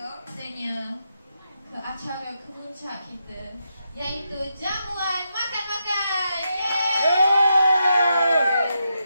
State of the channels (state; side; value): inverted; both; correlation -0.84